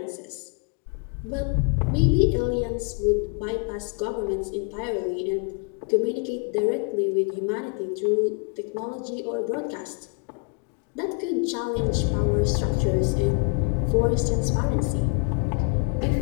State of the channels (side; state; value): right; quieter; 36.6 dB